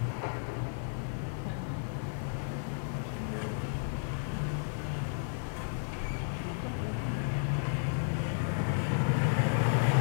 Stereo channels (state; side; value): silent; right; 56 dB below the other